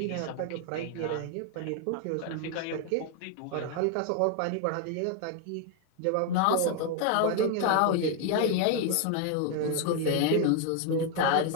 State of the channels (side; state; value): both; different; correlation 0.01